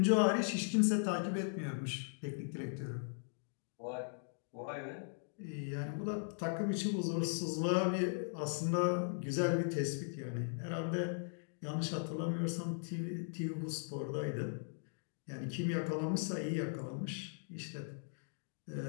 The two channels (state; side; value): silent; right; digital silence